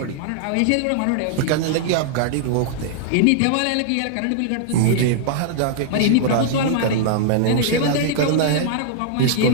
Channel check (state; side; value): different; both; correlation -0.01